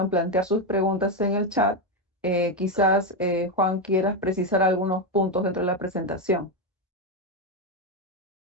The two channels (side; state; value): both; normal; correlation 0.08